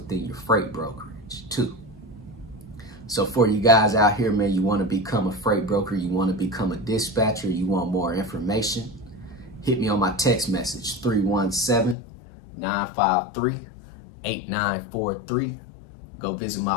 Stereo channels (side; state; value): right; drops out; at 12.0 s